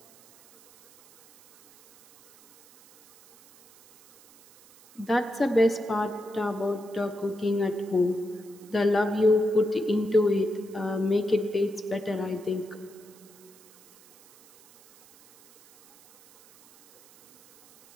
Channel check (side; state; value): right; noise; hiss, 25 dB below the sound